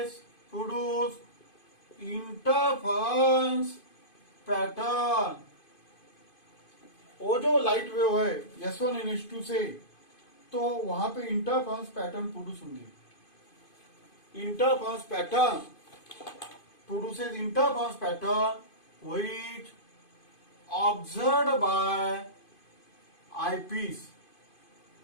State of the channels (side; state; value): right; late; 2.5 ms